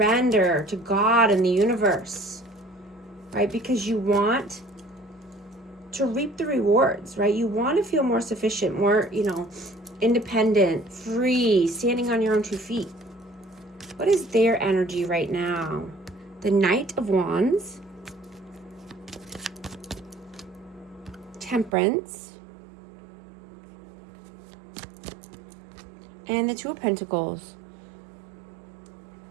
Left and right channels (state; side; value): drops out; left; at 21.8 s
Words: to God and the universe. Right? Because you want to reap the rewards, right? You want to feel more sufficient, more, you know, independent, free, standing on your own 2 feet. What is their energy right now? The Knight of Wands, Temperance, and the 2 of Pentacles.